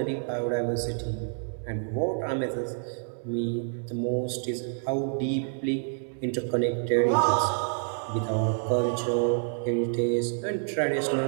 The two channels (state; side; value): silent; left; digital silence